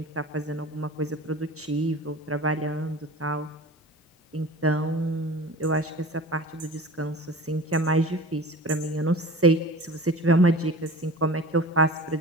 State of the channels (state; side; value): normal; both; correlation 0.37